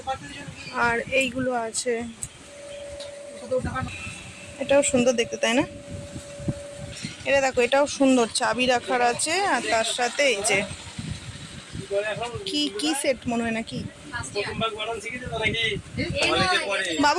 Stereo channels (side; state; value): both; identical; correlation 1.00